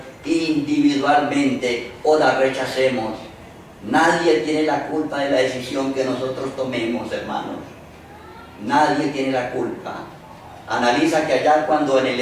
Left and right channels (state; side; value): identical; both; correlation 1.00